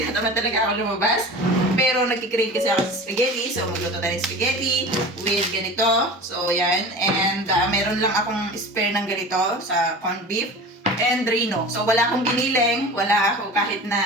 talaga ako lumabas. Pero nagkikrave kasi ako sa spaghetti. So, magluto tayo ng spaghetti with ganito. So, yan. And meron lang akong spare ng ganito sa corned beef and reno. So, wala akong giniling. Wala ako kahit na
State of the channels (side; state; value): both; normal; correlation 0.35